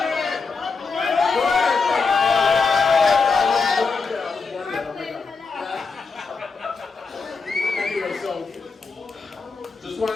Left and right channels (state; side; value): quieter; right; 4.7 dB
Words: Anyway, so just